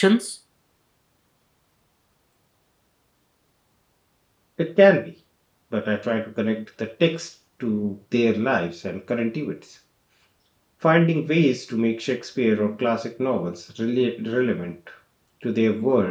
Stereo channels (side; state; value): both; identical; correlation 1.00